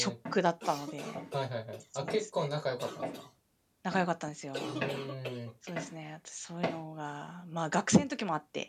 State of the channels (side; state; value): both; identical; correlation 1.00